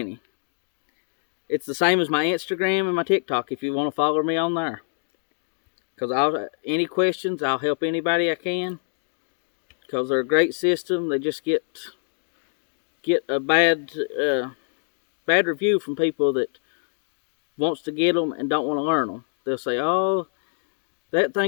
It's the same as my Instagram and my TikTok if you want to follow me on there. Because any questions, I'll help anybody I can. Because they're a great system. They just get a bad review from people that wants to get them and don't want to learn them. They'll say, oh, that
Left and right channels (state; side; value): silent; right; digital silence